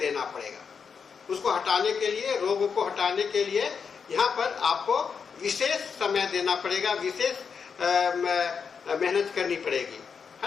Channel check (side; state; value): right; quieter; 6.1 dB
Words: पड़ेगा उसको हटाने के लिए, रोग को हटाने के लिए यहाँ पर आपको विशेष समय देना पड़ेगा, विशेष मेहनत करनी पड़ेगी,